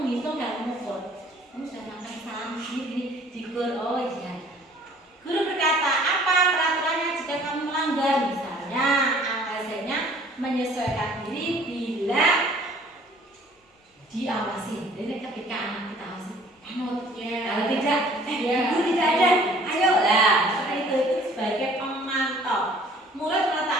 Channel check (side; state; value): both; normal; correlation 0.54